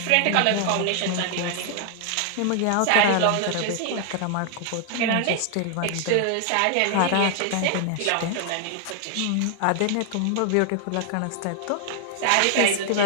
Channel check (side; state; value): both; different; correlation 0.00